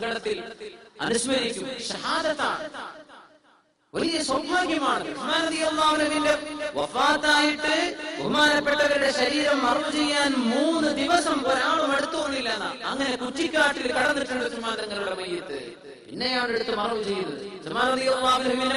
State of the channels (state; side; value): identical; both; correlation 1.00